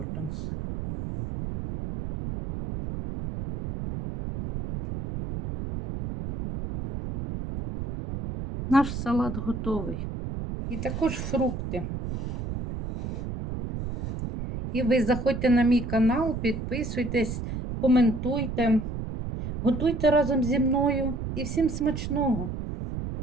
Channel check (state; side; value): noise; right; rumble, 6 dB below the sound